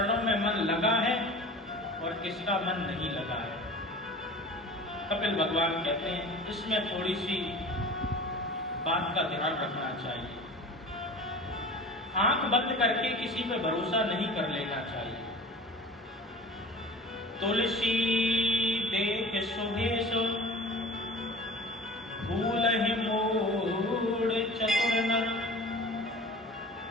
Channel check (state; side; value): normal; both; correlation 0.40